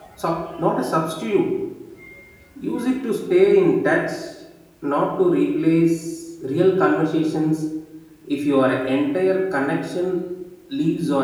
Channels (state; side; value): identical; both; correlation 1.00